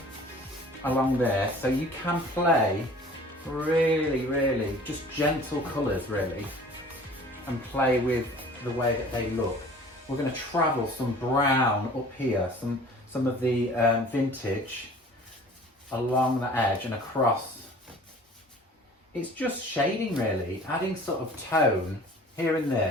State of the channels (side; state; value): both; normal; correlation 0.47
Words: along there, so you can play really just gentle colours really, and play with the way that they look. We're going to travel some brown up here, some of the Vintage along the edge and across. It's just shading really, adding sort of tone here and